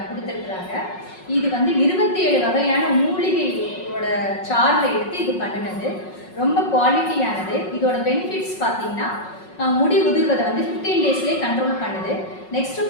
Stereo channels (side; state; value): right; late; 5.4 ms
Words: கொடுத்துருக்குறாங்க. இது வந்து 27 வகையான மூலிகையோட சார்ல எடுத்து இது பண்ணினது. ரொம்ப குவாலிட்டியானது. இதோட பெனிஃபிட்ஸ் பார்த்தீங்கன்னா முடி உதிர்வதை வந்து 15 டேஸ்லேயே கண்ட்ரோல் பண்ணுது. நெக்ஸ்ட்டு